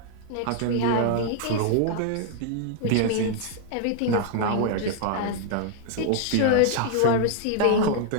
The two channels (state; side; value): different; both; correlation 0.00